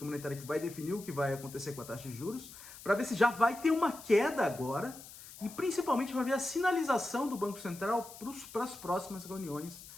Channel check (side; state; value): left; noise; hiss, 16 dB below the sound